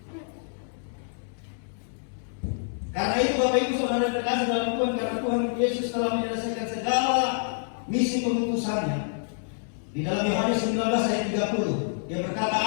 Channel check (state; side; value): silent; right; 60 dB below the other